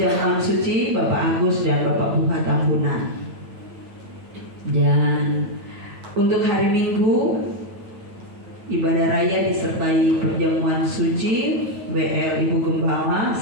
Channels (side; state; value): left; late; 9.1 ms